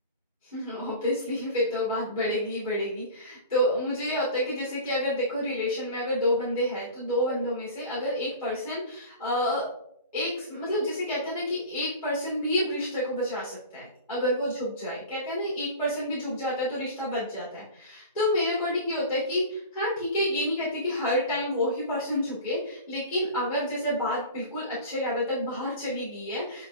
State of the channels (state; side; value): inverted; both; correlation -0.35